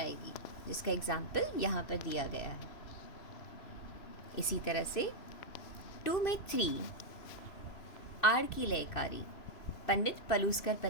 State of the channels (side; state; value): right; late; 3.0 ms